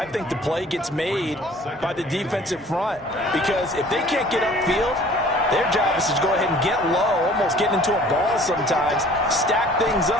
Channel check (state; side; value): normal; both; correlation 0.51